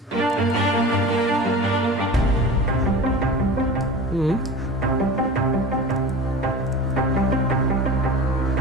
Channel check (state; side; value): normal; both; correlation 0.34